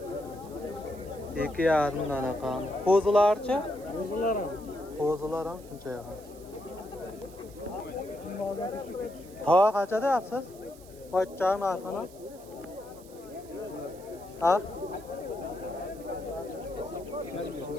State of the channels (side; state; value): right; noise; hiss, 22 dB below the sound